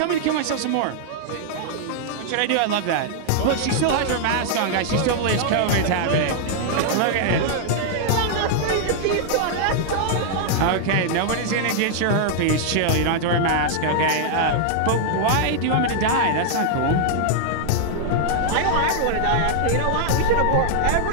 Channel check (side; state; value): both; different; correlation -0.01